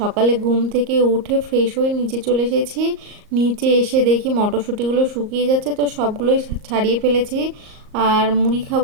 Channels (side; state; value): left; late; 38 ms